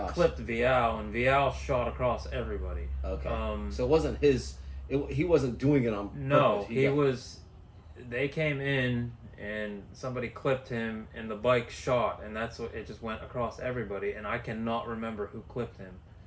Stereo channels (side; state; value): both; identical; correlation 1.00